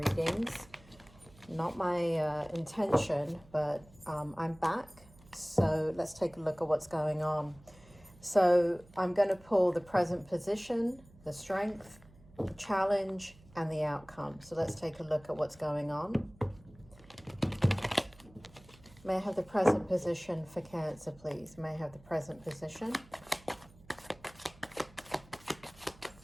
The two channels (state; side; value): noise; right; hum, 24 dB below the sound